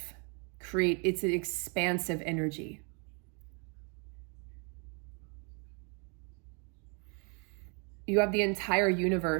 It's an expansive energy. You have the entire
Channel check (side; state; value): left; quieter; 35.9 dB